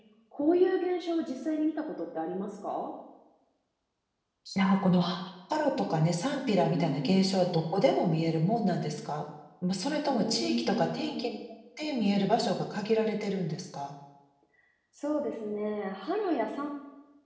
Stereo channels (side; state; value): both; identical; correlation 1.00